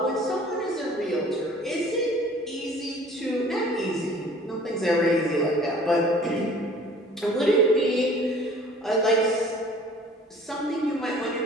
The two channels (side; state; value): both; normal; correlation 0.50